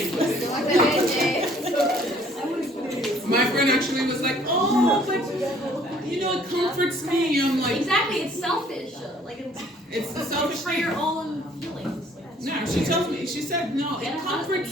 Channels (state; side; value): normal; both; correlation 0.59